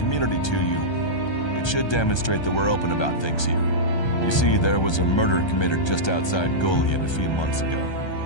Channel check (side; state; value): right; late; 1.3 ms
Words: to you, it should demonstrate that we're open about things here. You see, there was a murder committed just outside Goliath a few months ago.